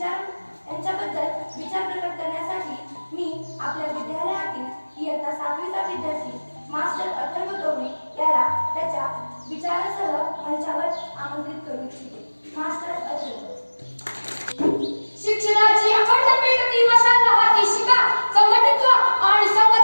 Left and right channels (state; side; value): inverted; both; correlation -1.00